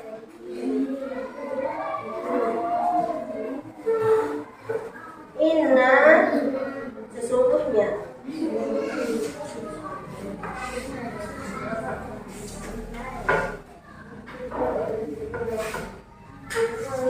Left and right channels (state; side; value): identical; both; correlation 1.00